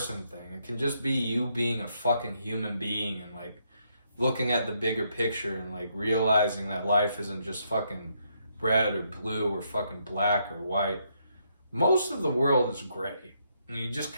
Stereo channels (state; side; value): inverted; both; correlation -0.75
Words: thing. It can just be you being a fucking human being and, like, looking at the bigger picture and, like, realizing that life isn't just fucking red or blue or fucking black or white. Most of the world is gray. And you just